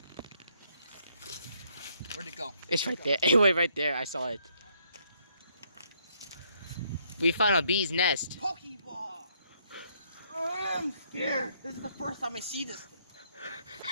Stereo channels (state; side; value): inverted; both; correlation -0.70